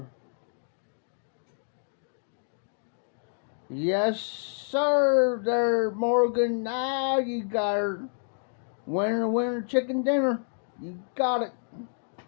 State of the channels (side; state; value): right; silent; digital silence